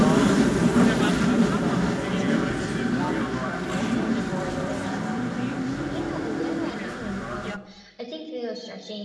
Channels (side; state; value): both; identical; correlation 1.00